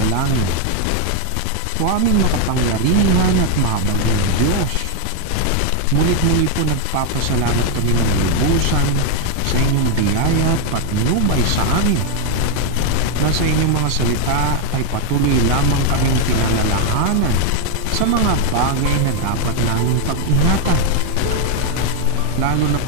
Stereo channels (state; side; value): different; both; correlation 0.01